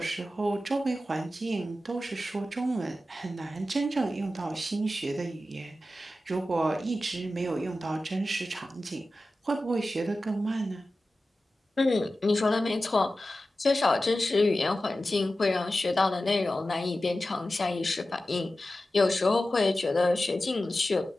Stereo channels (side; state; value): both; normal; correlation 0.94